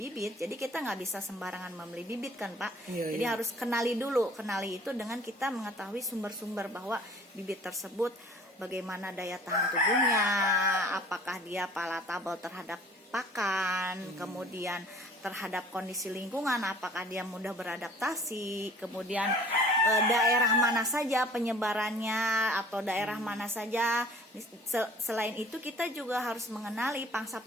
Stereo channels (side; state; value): both; normal; correlation 0.50